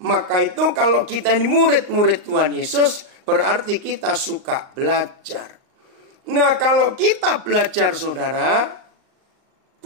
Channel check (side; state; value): left; late; 38 ms